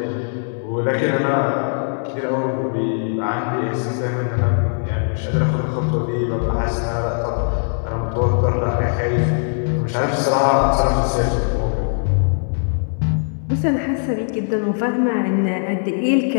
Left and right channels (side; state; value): right; silent; 66 dB below the other